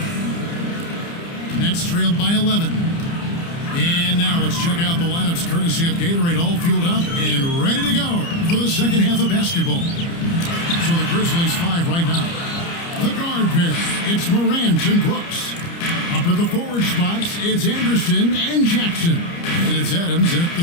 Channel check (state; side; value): late; right; 29 ms